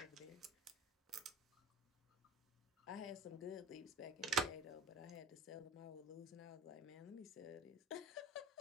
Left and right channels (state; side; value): normal; both; correlation 0.39